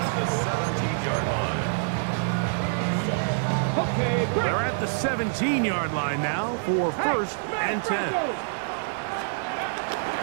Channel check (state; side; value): silent; left; 56 dB below the other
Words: They're at the 17-yard line now for 1st and 10.